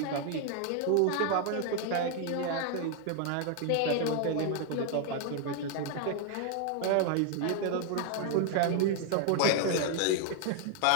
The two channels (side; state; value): both; different; correlation 0.00